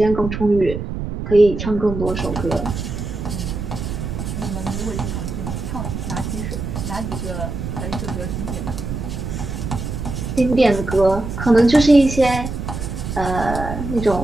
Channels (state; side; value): noise; right; rumble, 5 dB below the sound